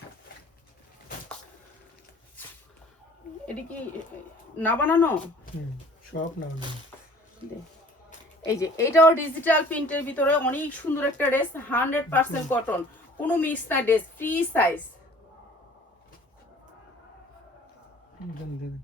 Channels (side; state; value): both; normal; correlation 0.51